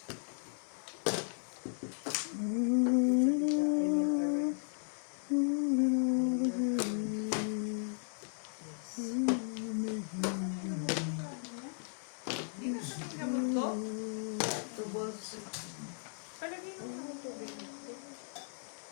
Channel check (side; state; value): right; silent; 54 dB below the other